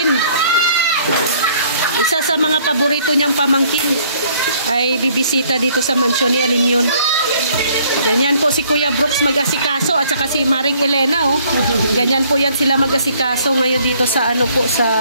Isa sa mga paborito niyang pamangkin ay bibisita dito sa mansyon ni Alimyon. Ganyan po si Kuya Brooks mag-asikaso at saka si Maring Elena, oh. Ganyan po yan sila mag-asikaso ngayon dito sa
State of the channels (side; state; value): both; inverted; correlation -0.61